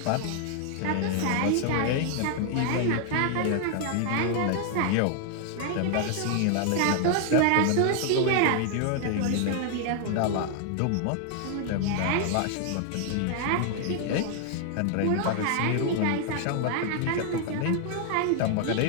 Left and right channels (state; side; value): different; both; correlation 0.00